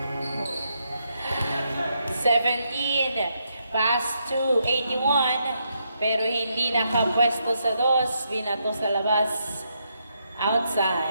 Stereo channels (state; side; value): inverted; both; correlation -0.79